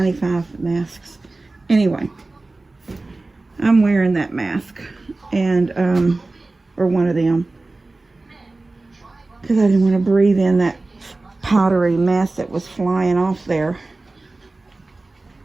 masks. Anyway, I'm wearing that mask, and or one of them, because I didn't want to breathe in that powdery mess that was flying off there.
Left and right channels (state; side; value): quieter; left; 3.2 dB